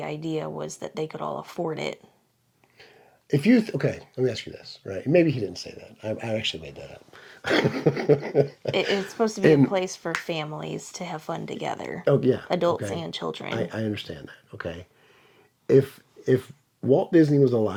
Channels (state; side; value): identical; both; correlation 1.00